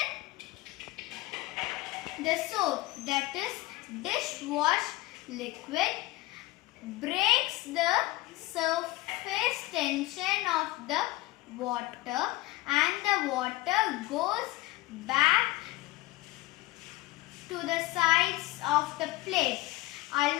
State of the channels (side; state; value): right; quieter; 19.4 dB